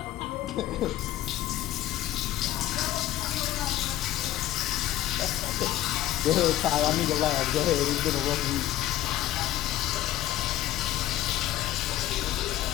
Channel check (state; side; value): quieter; right; 13.8 dB